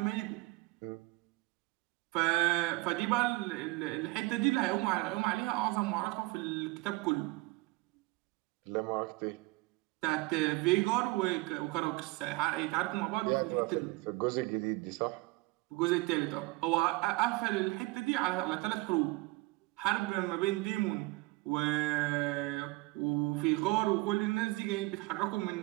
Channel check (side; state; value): left; quieter; 22.8 dB